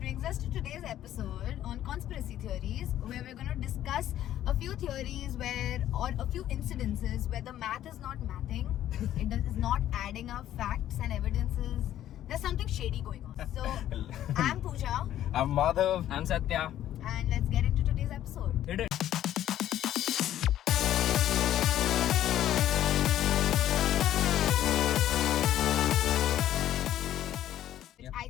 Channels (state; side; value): quieter; right; 12.2 dB